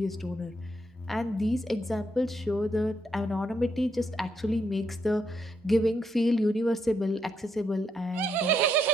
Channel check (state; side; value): normal; both; correlation 0.77